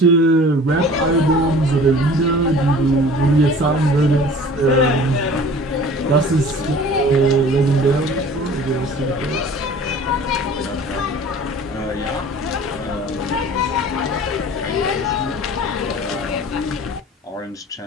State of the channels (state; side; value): normal; both; correlation 0.45